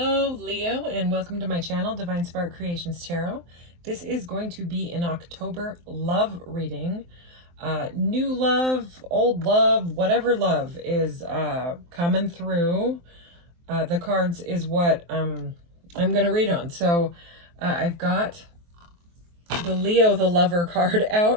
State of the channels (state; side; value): late; left; 23 ms